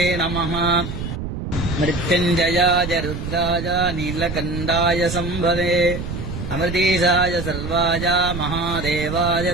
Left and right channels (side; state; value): right; noise; rumble, 6 dB below the sound